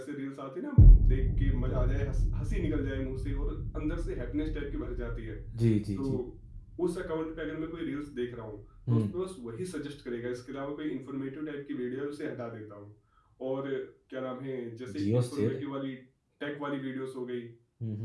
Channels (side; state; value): both; identical; correlation 1.00